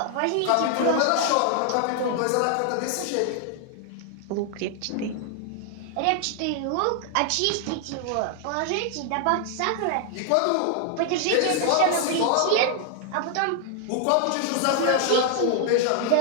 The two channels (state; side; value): different; both; correlation 0.00